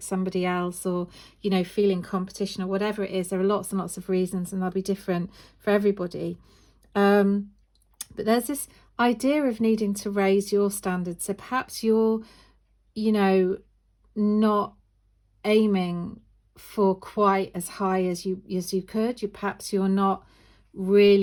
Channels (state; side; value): identical; both; correlation 1.00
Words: somebody else, or, you know, feeling competition, or whatever it is. There are lots and lots of reasons, and they'll be different for everybody. But there's this idea of needing to raise your standards. So perhaps you're, you know, not aiming for quite as high as you could. Perhaps you're not